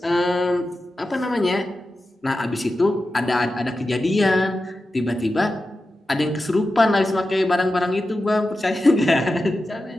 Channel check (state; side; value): normal; both; correlation 0.92